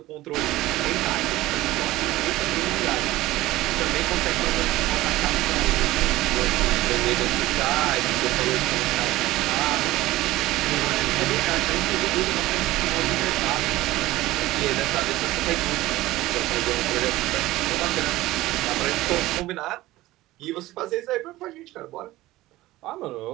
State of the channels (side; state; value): left; quieter; 17.3 dB